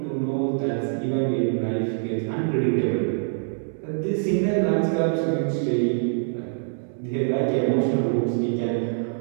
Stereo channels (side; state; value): left; silent; 62 dB below the other